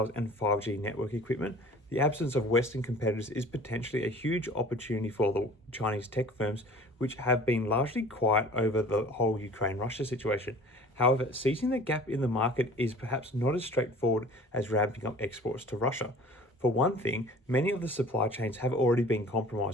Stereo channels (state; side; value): normal; both; correlation 0.45